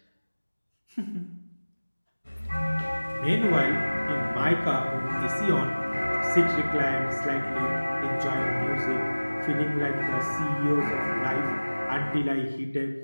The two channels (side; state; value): both; inverted; correlation -1.00